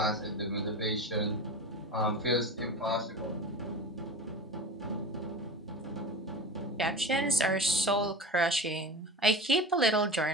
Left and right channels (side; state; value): both; normal; correlation 0.31